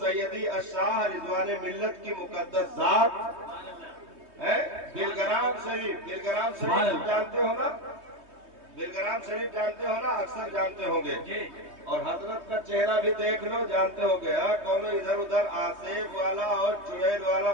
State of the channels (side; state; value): left; late; 3.2 ms